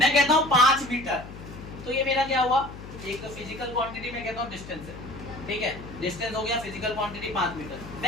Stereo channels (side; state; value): left; noise; hum, 13 dB below the sound